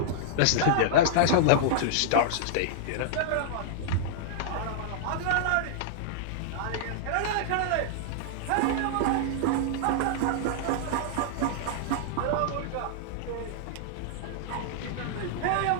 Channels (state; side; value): different; both; correlation -0.01